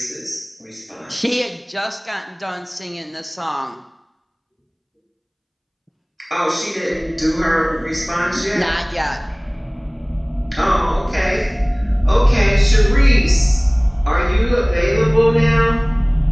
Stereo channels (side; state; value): both; identical; correlation 1.00